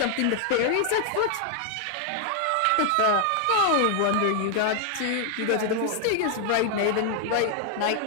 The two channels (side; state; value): both; different; correlation 0.00